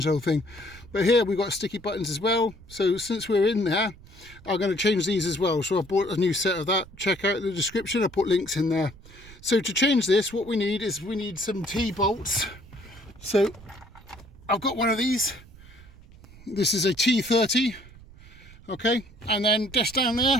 the whole thing. But here we've got sticky buttons as well, so since we're in there, I'm going to change these as well. So I bought a new set of that. Check out the description, I put links in there. So to change this, what we need is some T-bolts. So I've got one of these. This is a T30, okay, and then just down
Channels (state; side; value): noise; right; rumble, 21 dB below the sound